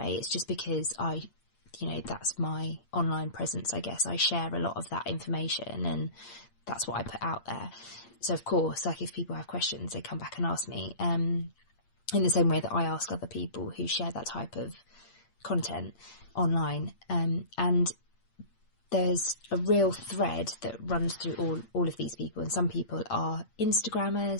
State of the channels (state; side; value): late; right; 8.6 ms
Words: It's just because that's my online presence, I guess. I share a lot of that information and that's what I put out there. So of course, if people have questions, they come back and ask me, in the same way that I ask other people who share that type of content online. And there's a real thread that runs through all of these people. And some people are Instagrammers,